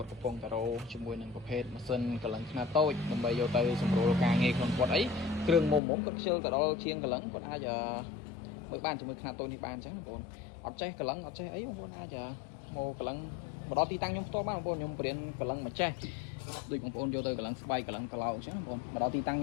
ត់កំពុងតរោជាមួយនឹងប្រភេទម៉ាស៊ីនកលឹងខ្នាតតូចដើម្បីយកទៅសម្រួលការងារក្នុងគាត់អីគ្រឿងមុំគាត់ខ្ជិលទៅដល់ជាងកលឹងគាត់អាចមើលបានជាមួយខ្នាតតូចនេះបានអញ្ចឹងបងប្អូនអត់ចេះកលឹងអត់ចេះអីបងប្អូនអាចមកកលឹងមកដល់ទីតាំងខ្ញុំផ្ទាល់បានបងប្អូនខ្ញុំបរៀនកលឹងមកចេះដូចបងប្អូនយកទៅកលឹងស្បែកកលឹងក្លោកអញ្ចឹងបងប្អូនមកដល់ទីតាំងខ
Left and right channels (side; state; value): right; drops out; at 5.8 s